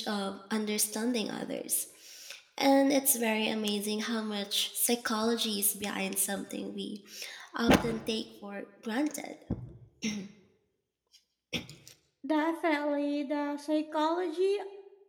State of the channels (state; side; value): identical; both; correlation 1.00